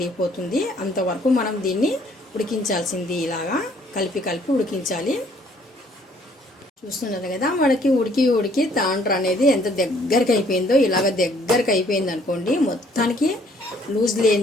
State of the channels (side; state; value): both; normal; correlation 0.62